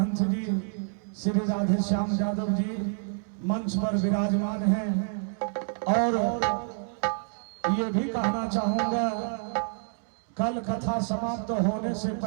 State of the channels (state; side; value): silent; left; digital silence